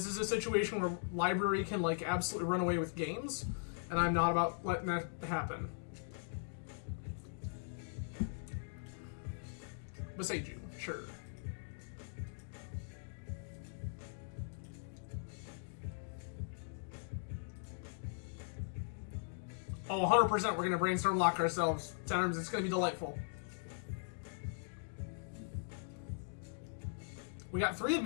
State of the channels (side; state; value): right; silent; digital silence